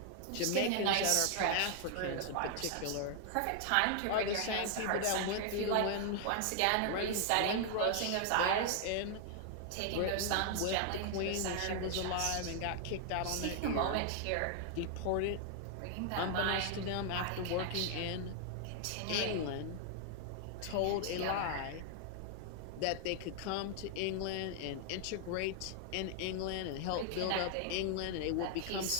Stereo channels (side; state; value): both; different; correlation 0.00